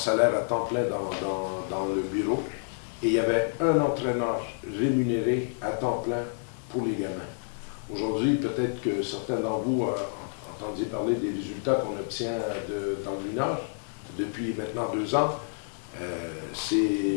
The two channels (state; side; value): silent; right; digital silence